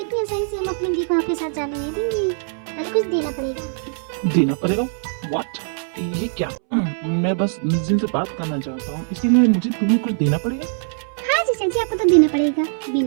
आसानी से हम अपनी दी को आपके साथ जाने नहीं देंगे। पहले कुछ देना पड़ेगा। देना पड़ेगा? व्हाट? ये क्या? मैं बस मिस जिन से बात करना चाहता हूँ, इसके लिए मुझे तुम्हें कुछ देना पड़ेगा? हाँ जीजा जी, आपको तो देना पड़ेगा,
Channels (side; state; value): left; silent; 65 dB below the other